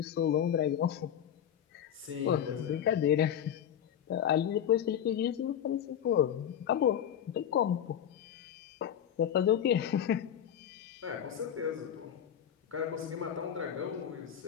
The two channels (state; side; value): quieter; right; 9.5 dB